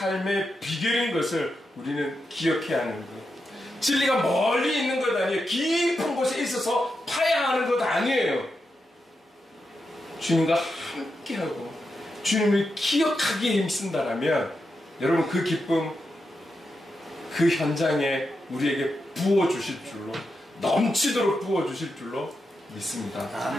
비결인 것을 우리는 기억해야 하는 거예요. 진리가 멀리 있는 것 아니에요. 깊은 곳에 있어서 파야 하는 것 아니에요. 주님과 함께하고 주님을 기억하기에 힘쓴다라면 여러분, 그 기쁨, 그 현장에 우리에게 부어주실 줄로, 넘치도록 부어주실 줄로 믿습니다.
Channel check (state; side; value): normal; both; correlation 0.87